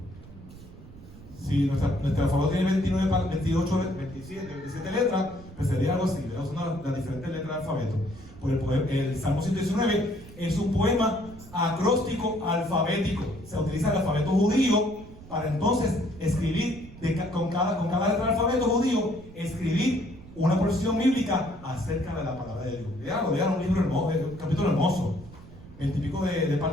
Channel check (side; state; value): right; noise; rumble, 18 dB below the sound